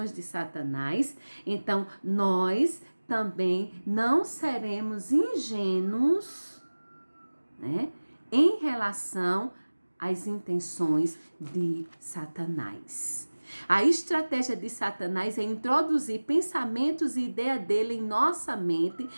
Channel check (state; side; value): inverted; both; correlation -1.00